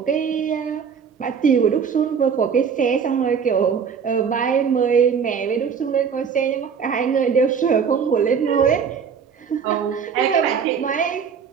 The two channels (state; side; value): quieter; left; 6.7 dB